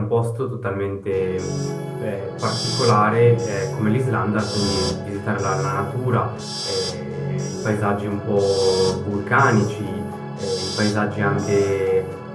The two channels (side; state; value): both; identical; correlation 1.00